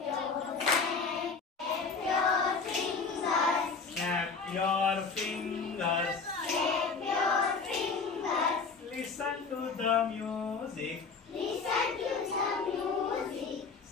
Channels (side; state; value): right; quieter; 4.8 dB